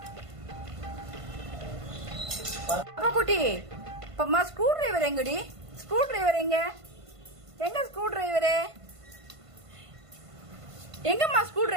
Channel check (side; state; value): left; late; 1.5 ms